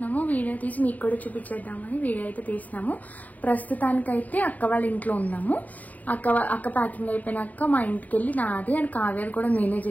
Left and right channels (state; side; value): late; right; 0.076 ms